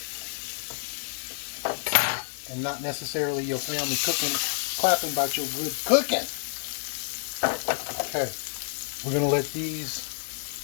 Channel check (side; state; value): right; silent; 59 dB below the other